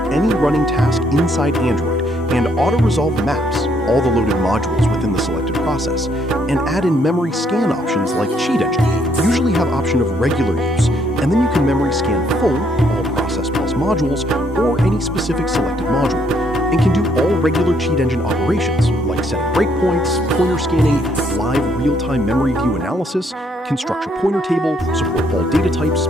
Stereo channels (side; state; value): both; normal; correlation 0.70